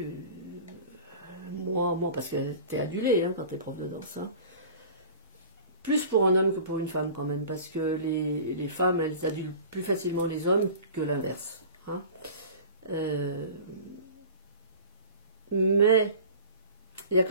moi parce que t'es adulé hein, quand t'es prof de danse, hein. Plus pour un homme que pour une femme quand même, parce que les femmes, elles adulent plus facilement les hommes que l'inverse, hein. Mais il y a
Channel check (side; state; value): both; inverted; correlation -0.40